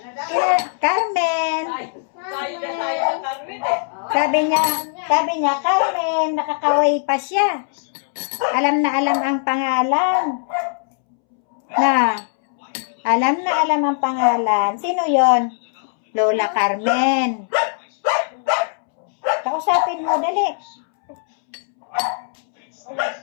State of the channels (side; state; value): right; silent; 66 dB below the other